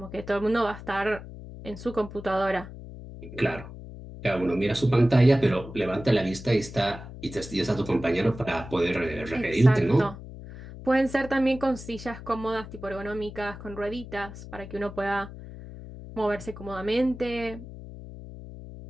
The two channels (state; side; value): noise; left; hum, 13 dB below the sound